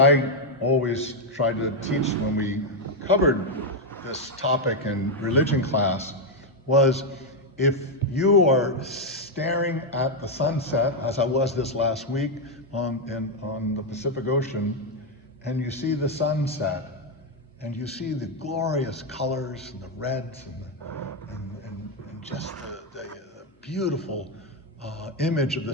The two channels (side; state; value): both; normal; correlation 0.02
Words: always tried to teach when we covered this topic in religion class was, if you are staring at the sunset, as I was this last week on the Pacific Ocean, and you see the sunset, and you see the glorious colors and the reds and just the beautiful image of the